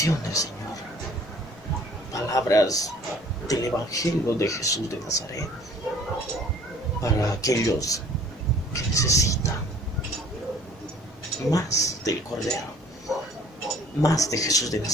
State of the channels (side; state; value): both; normal; correlation 0.54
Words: del Señor, palabras del Evangelio de Jesús de Nazaret para aquellos que necesitan más del Cordero, más de Jesús de